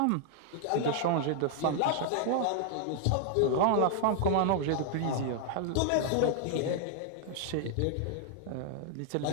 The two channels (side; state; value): both; different; correlation 0.00